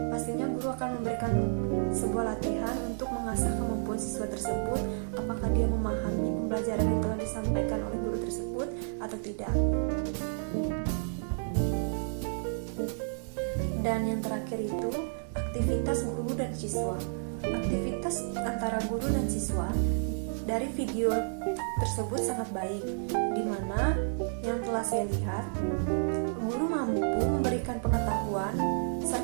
pastinya guru akan memberikan sebuah latihan untuk mengasah kemampuan siswa tersebut, apakah dia memahami pembelajaran yang telah disampaikan oleh guru tersebut atau tidak. Dan yang terakhir itu aktivitas guru dan siswa. Aktivitas antara guru dan siswa dari video tersebut sangat baik, di mana yang telah saya lihat, guru mampu memberikan pengetahuan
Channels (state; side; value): silent; left; digital silence